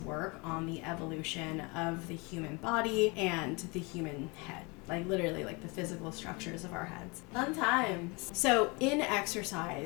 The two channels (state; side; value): quieter; right; 28.3 dB